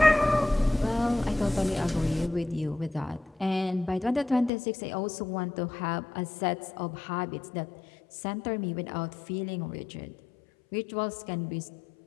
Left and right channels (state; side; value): drops out; right; at 4.5 s